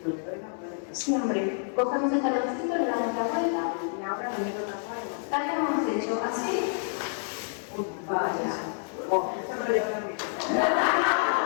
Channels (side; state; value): right; silent; 59 dB below the other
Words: Siempre cogemos el taloncito, le damos la vuelta y ahora le meto la vuelta. Tal como hemos hecho, así. Vaya.